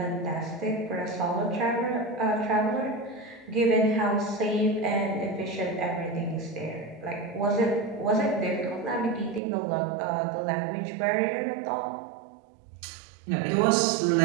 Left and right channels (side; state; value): left; drops out; at 9.4 s